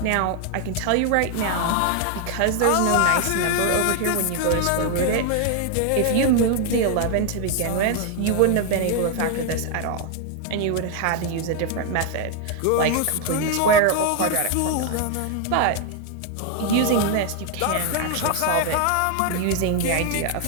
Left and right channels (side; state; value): both; different; correlation 0.00